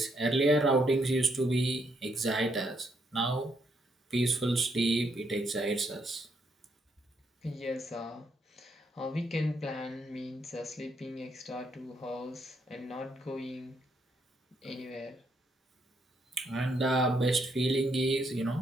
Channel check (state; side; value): normal; both; correlation 0.75